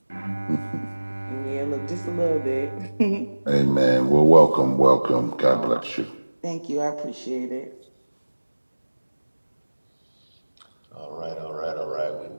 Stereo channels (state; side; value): inverted; both; correlation -1.00